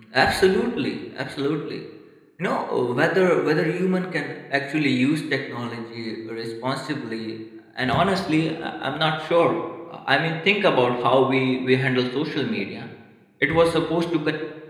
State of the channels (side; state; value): both; identical; correlation 1.00